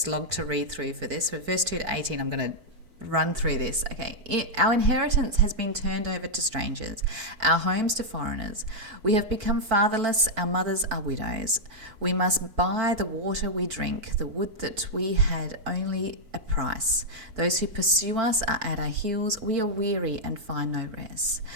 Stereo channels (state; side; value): late; left; 4.5 ms